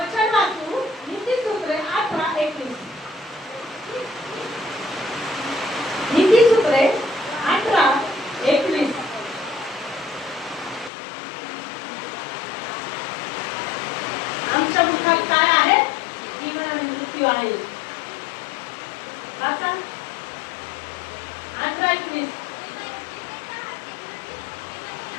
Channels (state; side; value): drops out; right; at 10.9 s